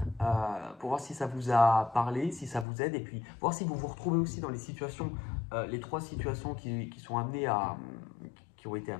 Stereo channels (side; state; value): right; drops out; at 2.7 s